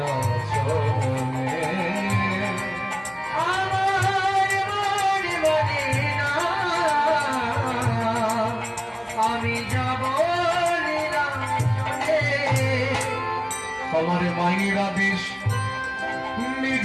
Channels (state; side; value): identical; both; correlation 1.00